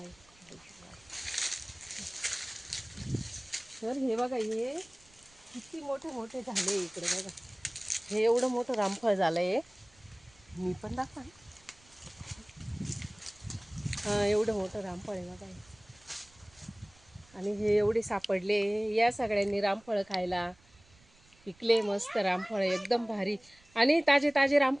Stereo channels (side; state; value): right; noise; rumble, 28 dB below the sound